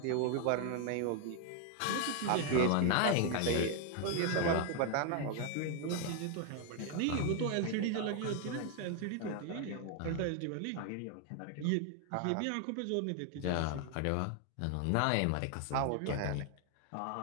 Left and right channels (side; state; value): both; different; correlation 0.00